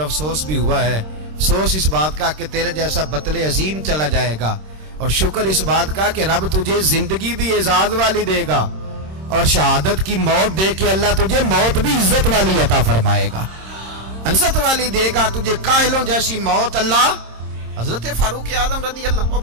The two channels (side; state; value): left; late; 26 ms